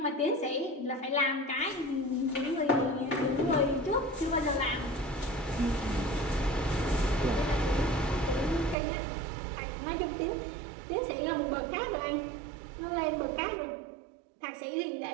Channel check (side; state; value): left; drops out; at 8.8 s